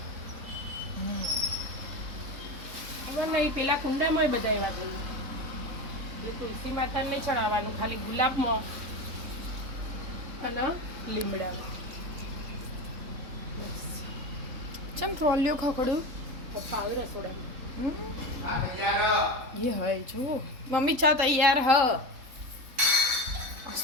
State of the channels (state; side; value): late; left; 3.6 ms